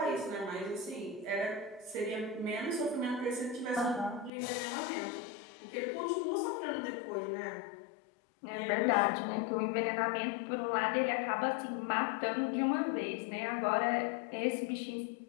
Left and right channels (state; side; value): drops out; right; at 4.3 s